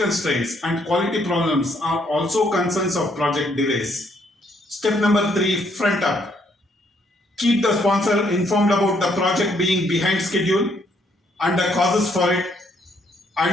and quality problems are also concerns of project delays. Step number 3, front up. Keep the sponsor informed about the project being behind schedule and the causes for it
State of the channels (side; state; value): both; normal; correlation 0.70